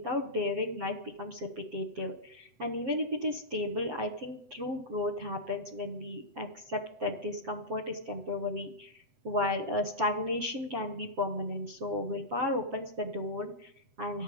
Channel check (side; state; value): left; late; 7.9 ms